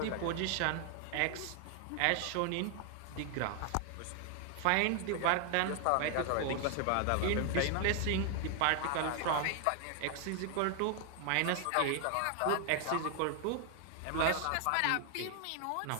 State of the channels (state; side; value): different; both; correlation 0.00